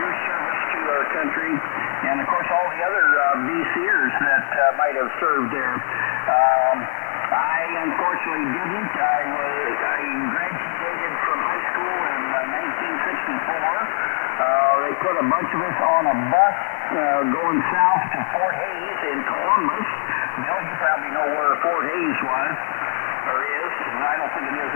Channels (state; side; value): silent; right; 64 dB below the other